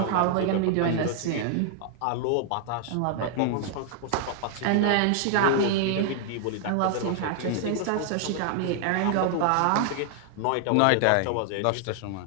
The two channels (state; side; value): different; both; correlation 0.00